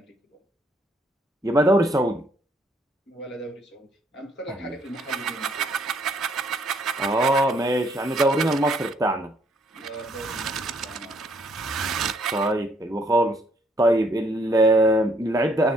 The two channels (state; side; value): normal; both; correlation 0.67